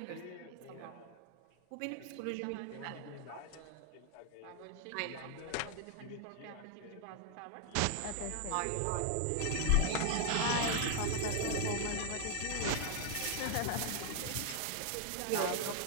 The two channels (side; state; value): both; different; correlation 0.00